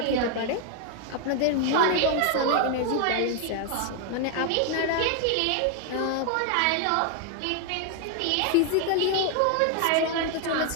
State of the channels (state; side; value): different; both; correlation 0.00